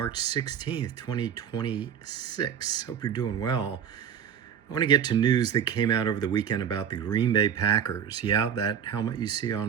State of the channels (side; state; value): left; quieter; 8.5 dB